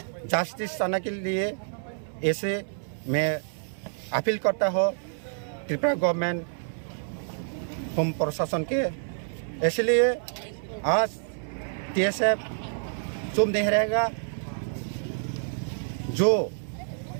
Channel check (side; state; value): left; silent; 59 dB below the other